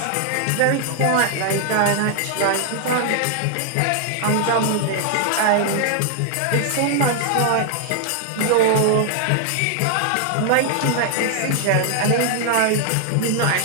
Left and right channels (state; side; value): different; both; correlation 0.00